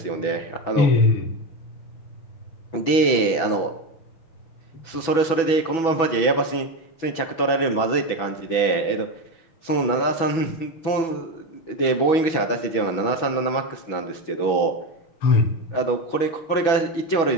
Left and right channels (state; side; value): late; right; 6.1 ms